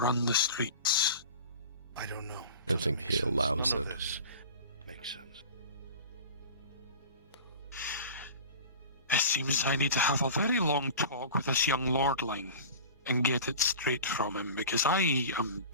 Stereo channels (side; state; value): both; inverted; correlation -0.36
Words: the streets. I don't know. I don't think he allows it. Makes sense. It seems I need to have a very long talk with this young lordling and get it straight from him, because I am